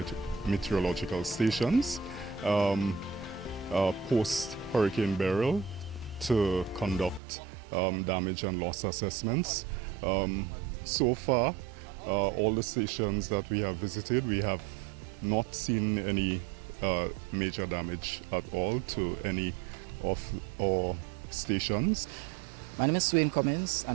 stations post Hurricane Beryl to conduct damage and loss assessments. So far, all the stations that we have visited, we have not seen any major damage at all to any of our stations. My name is Swain Cummins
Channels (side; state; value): left; drops out; at 7.2 s